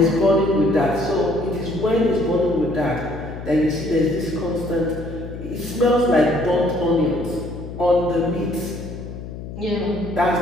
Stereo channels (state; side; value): noise; left; hum, 10 dB below the sound